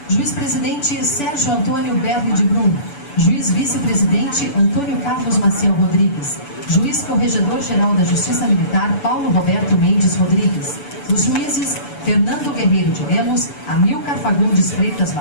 Juiz-presidente Sérgio Antônio Berni de Brum, juiz vice-presidente Antônio Carlos Maciel Rodrigues, juiz corregedor-geral da Justiça Militar Paulo Roberto Mendes Rodrigues, os juízes Fernando Guerreiro de Lemos, Amilcar Fagundes Freitas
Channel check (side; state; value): right; late; 6.9 ms